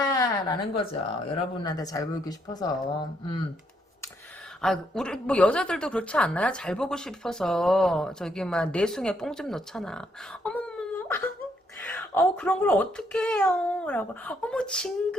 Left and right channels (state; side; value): normal; both; correlation 0.74